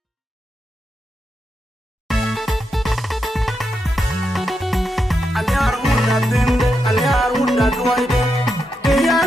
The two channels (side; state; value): both; normal; correlation 0.85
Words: anyar wunda tende anyar wunda duaide anyar